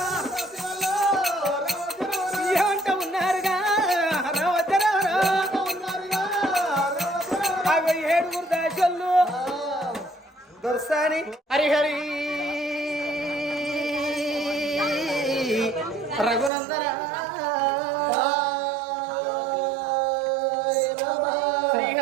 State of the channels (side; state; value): left; drops out; at 16.5 s